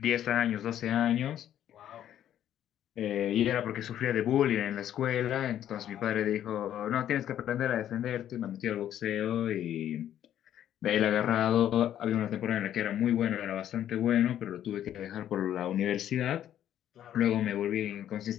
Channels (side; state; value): right; quieter; 11.0 dB